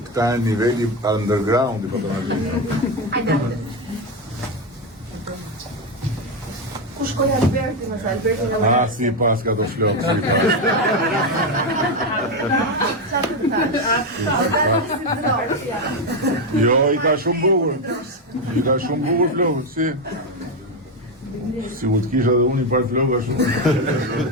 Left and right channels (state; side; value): normal; both; correlation 0.10